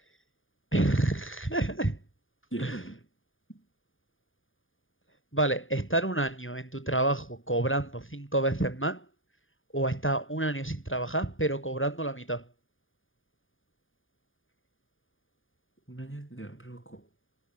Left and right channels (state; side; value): late; right; 0.58 ms